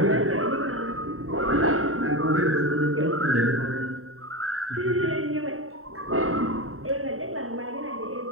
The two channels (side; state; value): left; late; 0.63 ms